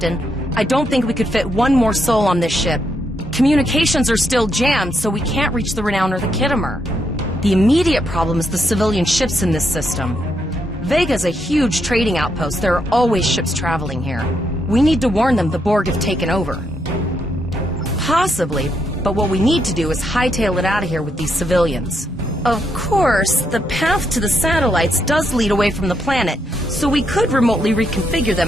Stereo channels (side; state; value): both; normal; correlation 0.79